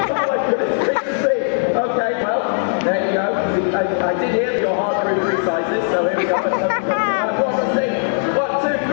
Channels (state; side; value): silent; right; digital silence